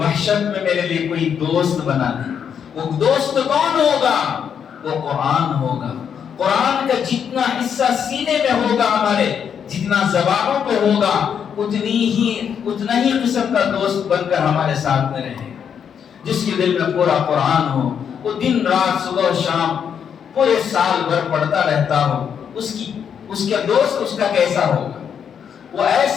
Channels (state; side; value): quieter; right; 7.7 dB